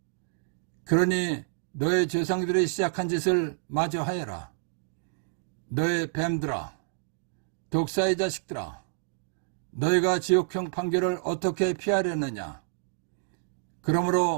그러니 너의 조상들이 시작한 짓을 마저 하여라. 너의 뱀들아, 독사의 자식들아, 너희가 지옥형 판결을 어떻게 피하려느냐.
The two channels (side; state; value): left; silent; digital silence